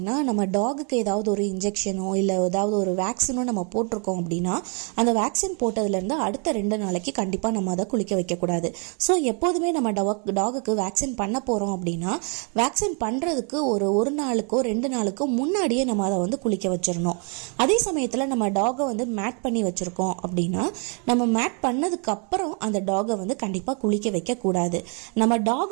நம்ம டாகுக்கு ஏதாவது ஒரு இன்ஜெக்ஷனோ இல்ல ஏதாவது ஒரு வேக்சினோ நம்ம போட்டிருக்கோம் அப்படின்னா அந்த வேக்சின் போட்டதுல இருந்து அடுத்த 2 நாளைக்கு கண்டிப்பா நம்ம அதை குளிக்க வைக்க கூடாது. ஸோ எப்போதுமே நம்ம டாகுக்கு வேக்சின் பண்ண போறோம் அப்படின்னா வேக்சின் பண்றதுக்கு ஒரு நாளுக்கோ 2 நாளுக்கோ முன்னாடியே நம்ம அதை குளிக்க வச்சிடணும். அதே சமயத்துல நம்ம டாகை மேட் பண்ணி வச்சிருக்கோம் அப்படின்னா நம்ம மேட் பண்ணதுக்கு அப்புறம் அந்த டாகை கண்டிப்பா குளிக்க வைக்க கூடாது. நம்ம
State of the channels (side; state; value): left; quieter; 37.8 dB